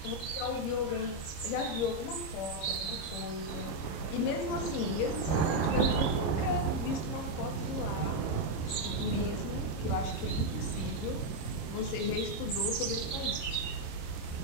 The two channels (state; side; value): late; right; 26 ms